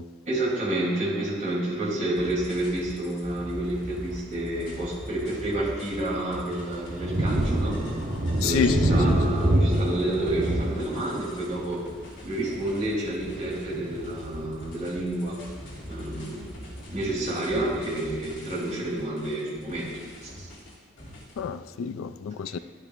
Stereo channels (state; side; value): normal; both; correlation 0.66